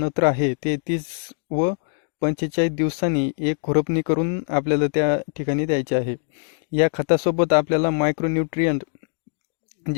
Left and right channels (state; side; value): silent; right; 64 dB below the other